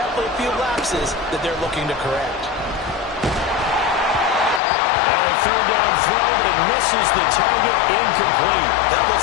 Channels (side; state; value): right; drops out; at 4.6 s